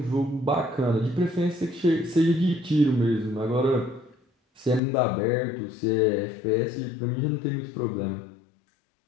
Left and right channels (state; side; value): drops out; right; at 4.8 s